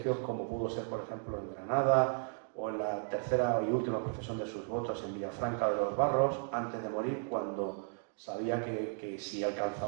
como pudo ser, por ejemplo, en Granada, o en la tercera y última profesión de sus votos en Villafranca de los Barros, antes de morir, cuando sabía que si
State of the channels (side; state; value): left; silent; 55 dB below the other